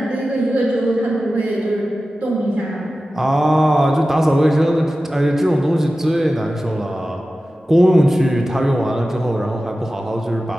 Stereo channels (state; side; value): normal; both; correlation 0.95